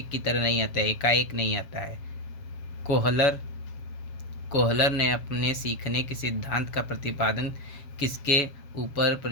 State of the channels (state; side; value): late; right; 7.4 ms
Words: की तरह नहीं आता है, एकाएक नहीं आता है। कोहलर ने अपने सीखने के सिद्धांत का प्रतिपादन किसके ऊपर